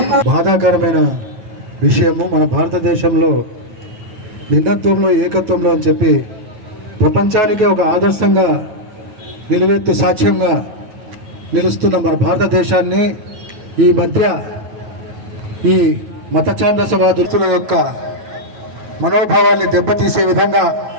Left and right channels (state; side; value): late; left; 9.3 ms